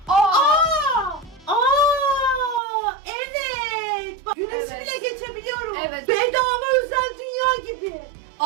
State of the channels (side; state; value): left; drops out; at 2.6 s